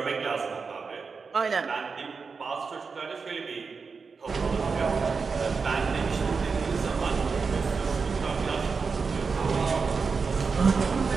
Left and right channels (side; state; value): left; quieter; 5.0 dB